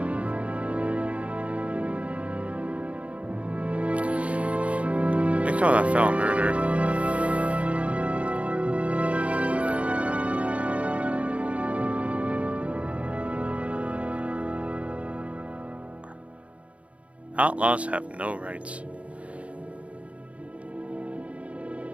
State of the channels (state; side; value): late; left; 0.064 ms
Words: They call that foul murder. Outlaws have no rights.